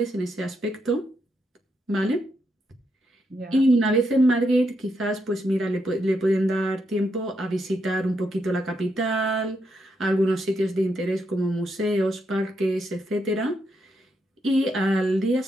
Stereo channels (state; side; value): normal; both; correlation 0.80